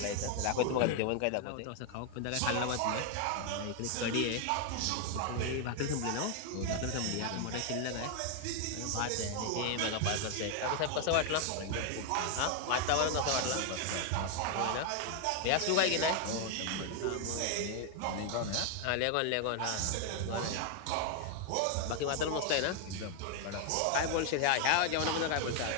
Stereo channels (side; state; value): both; different; correlation 0.01